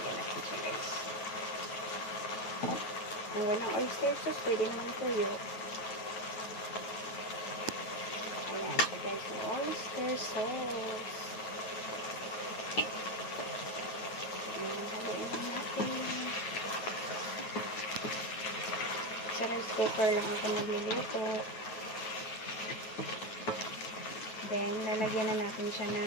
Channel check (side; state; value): right; late; 9.2 ms